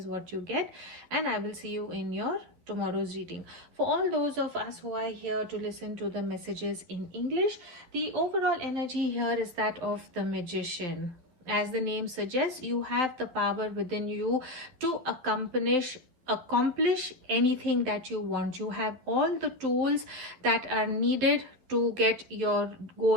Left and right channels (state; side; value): late; left; 12 ms